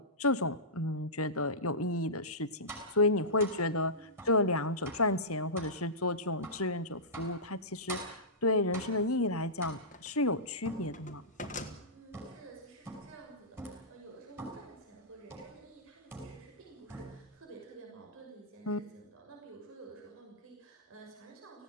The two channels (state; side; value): normal; both; correlation -0.17